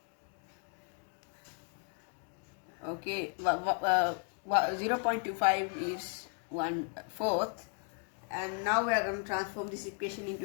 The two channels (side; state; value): right; quieter; 39.2 dB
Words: Okay, 0.25 is 1/4, and now we are going to transform this equation into